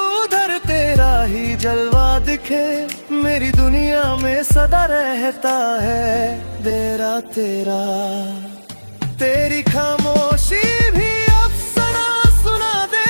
उधर तेरा ही जलवा दिखे, मेरी दुनिया में सदा रहता है तेरा तेरा। तेरी खामोशी भी अफसाना सुना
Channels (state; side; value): inverted; both; correlation -1.00